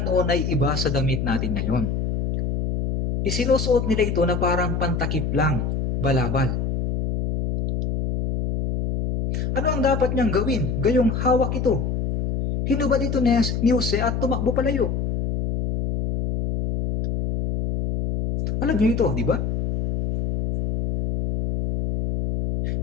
noon ay iba sa damit natin ngayon. Isinusuot nila ito na parang pantakip lang, balabal. Ano ang dapat niyang gawin? Gayong hawak ito. Hinubad ito ni Jose at tumakbo palayo. Alam niyo ito, di ba?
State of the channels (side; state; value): left; noise; hum, 1 dB below the sound